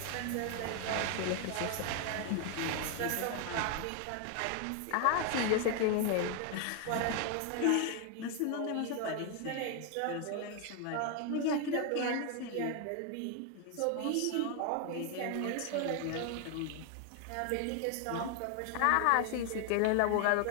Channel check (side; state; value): both; different; correlation 0.01